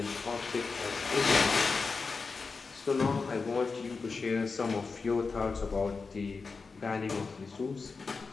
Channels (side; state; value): right; quieter; 4.5 dB